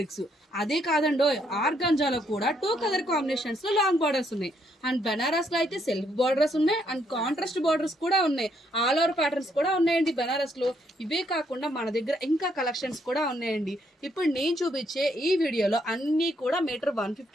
అదే కాదండో, ఆర్గంజాలో కూడా 2 కలర్ కాంబినేషన్స్ లో లాంగ్ బార్డర్స్ ఉన్నాయి. అండ్ బెనారస్ లో అయితే సెల్ఫ్ బార్డర్స్ ఉన్నాయి అండ్ కాంట్రాస్ట్ బార్డర్స్ కూడా ఉన్నాయి. ఆల్ ఓవర్ ప్యాటర్న్స్ కూడా ఉన్నాయండి బెనారస్ లో. ఇవే కాకుండా మన దగ్గర ఇంకా కలెక్షన్స్ కూడా ఉన్నాయండి. ఇప్పుడు నేను చూపించే ఈ వీడియోలో అన్ని కూడా మీటర్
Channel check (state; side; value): normal; both; correlation 0.72